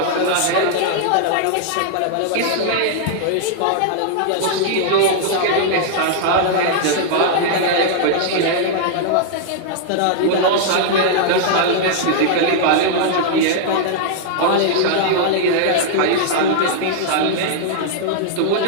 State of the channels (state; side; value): different; both; correlation -0.01